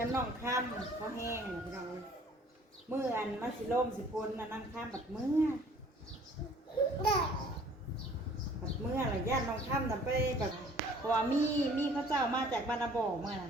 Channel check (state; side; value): normal; both; correlation 0.54